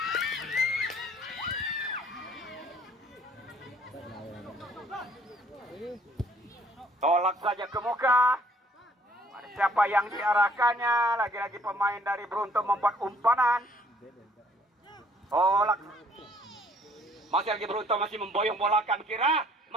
Tolak saja ke muka. Ada siapa yang diarahkannya? Lagi-lagi pemain dari Beruntu membuat umpanan. Tolak. Masih lagi Beruntu masih memboyong bola kan kira.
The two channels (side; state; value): both; normal; correlation 0.61